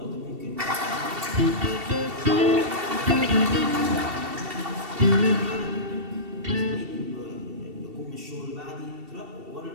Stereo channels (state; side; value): late; left; 2.7 ms